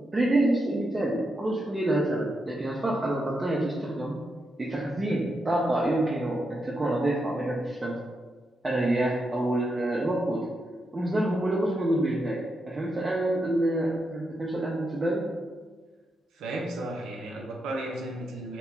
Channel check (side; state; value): both; normal; correlation 0.84